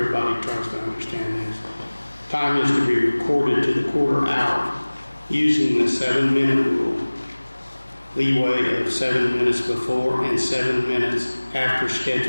tries to understand this. Time is to be recorded to the quarter hour using the 7-minute rule. Leeway of 7 minutes before and 7 minutes after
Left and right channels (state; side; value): inverted; both; correlation -1.00